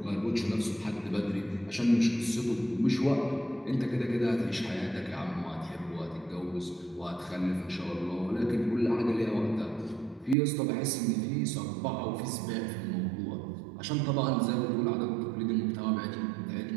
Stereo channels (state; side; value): drops out; left; at 10.4 s